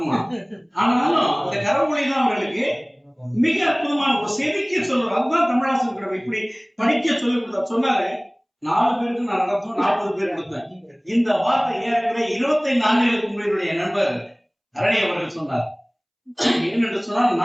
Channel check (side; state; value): both; identical; correlation 1.00